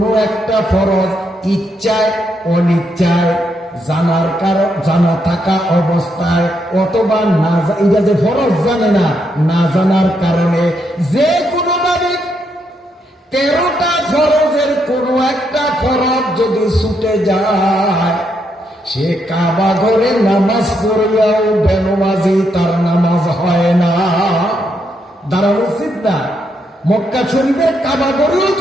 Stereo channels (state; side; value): normal; both; correlation 0.78